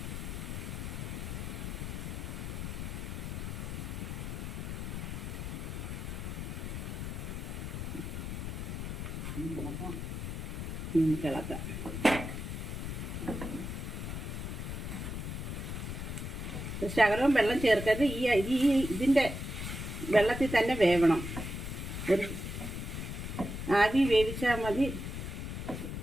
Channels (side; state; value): left; noise; rumble, 5 dB below the sound